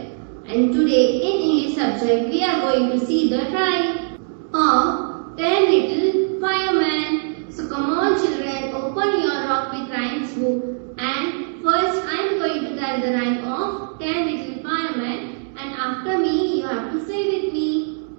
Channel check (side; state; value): left; silent; 65 dB below the other